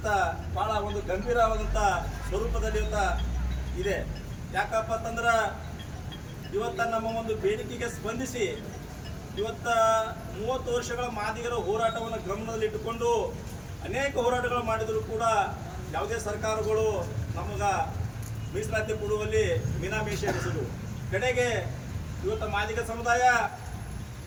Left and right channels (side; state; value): both; identical; correlation 1.00